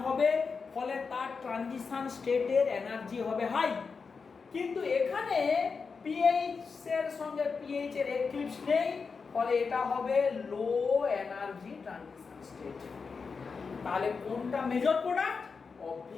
হবে, ফলে তার ট্রানজিশন স্টেটের এনার্জি হবে হাই। কিন্তু এখানে PH এর সঙ্গে PH এর এক্লিপস নেই, ফলে এটা হবে লো এনার্জি ট্রানজিশন স্টেট। তাহলে কোনটা মেজর প্রোডাক্ট?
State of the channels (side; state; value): right; quieter; 5.1 dB